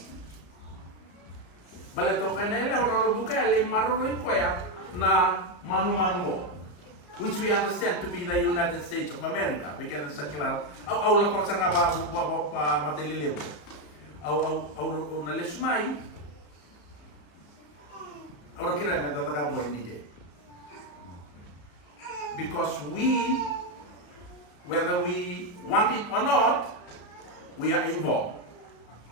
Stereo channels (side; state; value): right; late; 34 ms